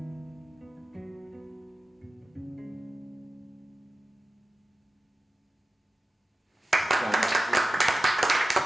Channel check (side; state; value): both; normal; correlation 0.95